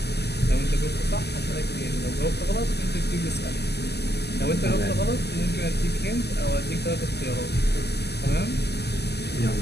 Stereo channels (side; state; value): right; late; 0.48 ms